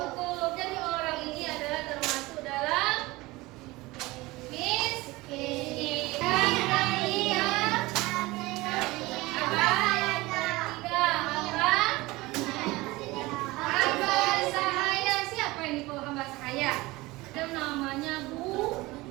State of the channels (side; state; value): left; quieter; 20.9 dB